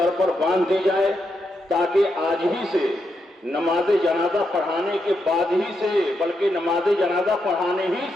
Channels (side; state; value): both; normal; correlation 0.82